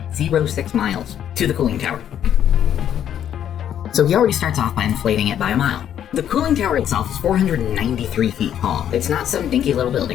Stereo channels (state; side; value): quieter; right; 10.0 dB